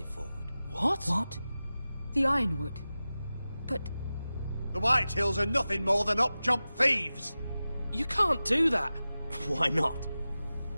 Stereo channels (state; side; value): inverted; both; correlation -0.95